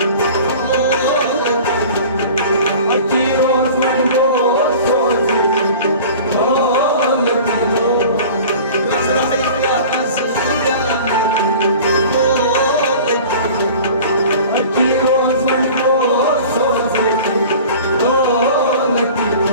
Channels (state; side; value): inverted; both; correlation -0.42